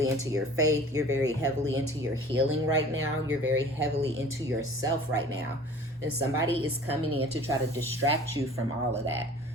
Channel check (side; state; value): both; normal; correlation 0.46